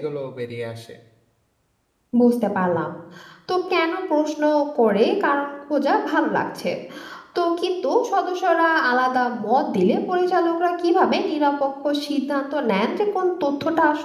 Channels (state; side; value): identical; both; correlation 1.00